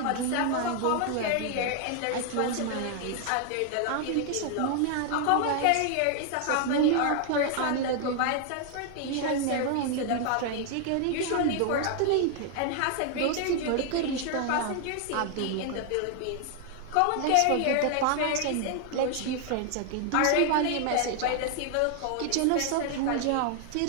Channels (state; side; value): different; both; correlation 0.00